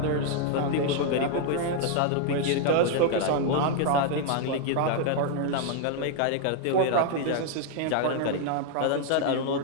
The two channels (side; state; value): both; different; correlation 0.00